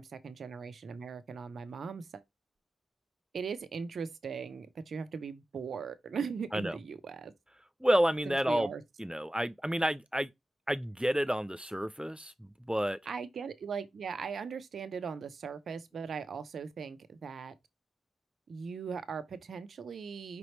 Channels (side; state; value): both; normal; correlation 0.94